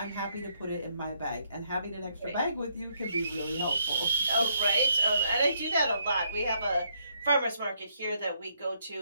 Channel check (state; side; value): inverted; both; correlation -0.73